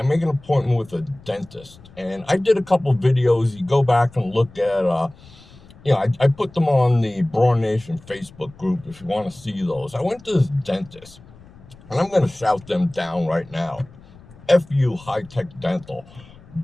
make an appointment with a dentist, and I did a couple of videos. You go back and look at. I put them on the Bror Nation Facebook group if you want to see those. I went to this dentist, and I'm going to shout them down right now. FU High Tech Dental.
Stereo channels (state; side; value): noise; left; rumble, 23 dB below the sound